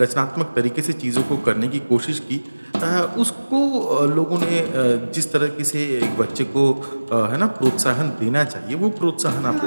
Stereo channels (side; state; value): both; inverted; correlation -1.00